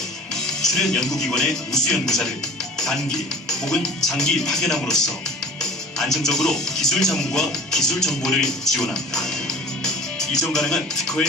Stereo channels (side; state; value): both; normal; correlation 0.44